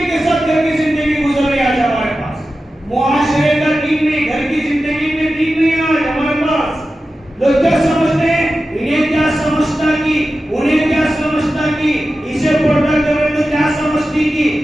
کے ساتھ گھر کی زندگی گزر رہی ہے آج ہمارے پاس۔ معاشرے کا دین نہیں، گھر کی زندگی میں دین نہیں آج ہمارے پاس۔ لوگ کیا سمجھتے ہیں؟ انہیں کیا سمجھتا کی، انہیں کیا سمجھتا کی، اسے پردہ کرے تو کیا سمجھتی کی،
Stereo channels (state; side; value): normal; both; correlation 0.93